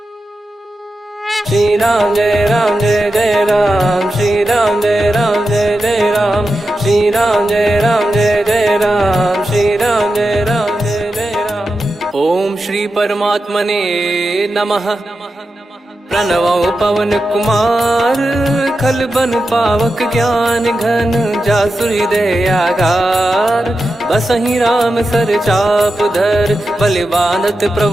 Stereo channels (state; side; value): normal; both; correlation 0.90